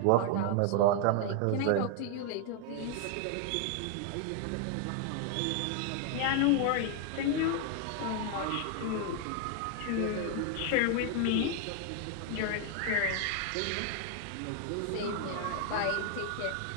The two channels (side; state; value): both; different; correlation 0.01